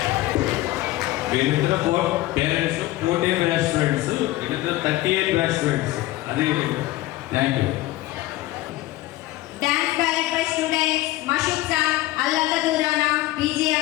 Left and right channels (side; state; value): right; quieter; 17.0 dB